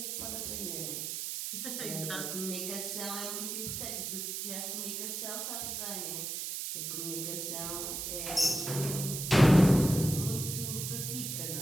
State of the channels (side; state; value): right; noise; hiss, 4 dB below the sound